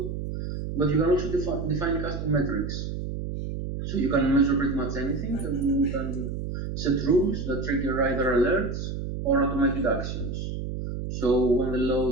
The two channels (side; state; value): right; noise; hum, 5 dB below the sound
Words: But you can also define custom metrics. So you can measure pretty much anything, and you can set rules that trigger either alerts or automated actions. So when the